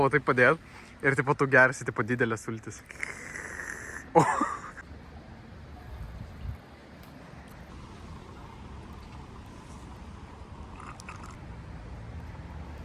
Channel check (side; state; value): both; identical; correlation 1.00